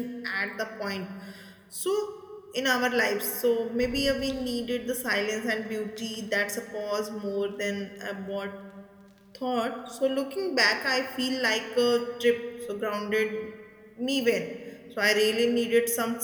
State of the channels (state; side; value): identical; both; correlation 1.00